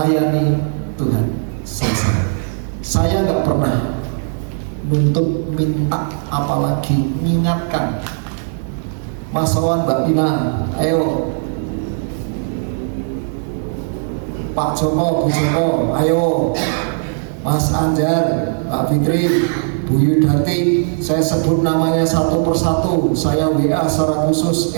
Tuhan selesai. Saya nggak pernah nuntut minta, apalagi mengingatkan. Mas Wawan, Mbak Dina, ayo. Pak Joko, Bu Joko, ayo. Mas Anjar, Mbak Fitri, Bu Yudati, saya sebut namanya satu persatu, saya WA secara khusus.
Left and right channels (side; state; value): left; silent; digital silence